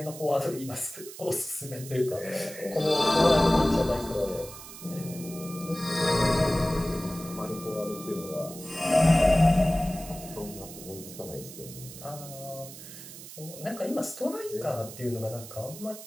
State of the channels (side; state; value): right; noise; hiss, 14 dB below the sound